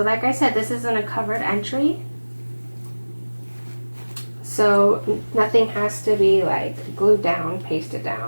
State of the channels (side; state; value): both; inverted; correlation -1.00